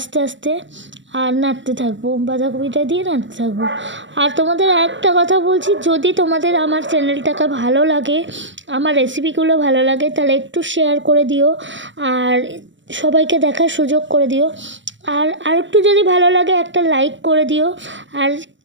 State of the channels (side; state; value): left; late; 0.54 ms